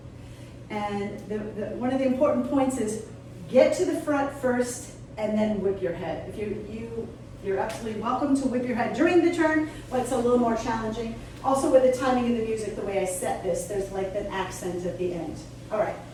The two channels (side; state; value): both; identical; correlation 1.00